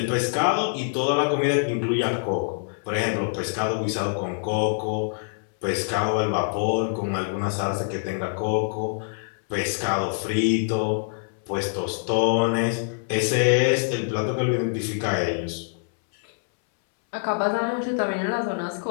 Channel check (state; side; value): silent; right; 62 dB below the other